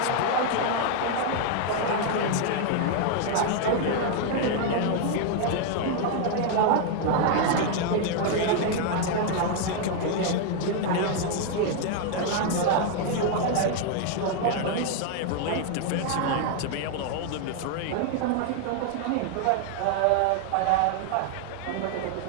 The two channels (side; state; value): both; different; correlation 0.00